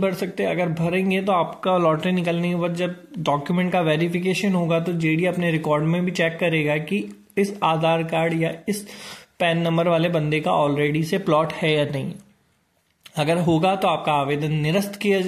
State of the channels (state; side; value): identical; both; correlation 1.00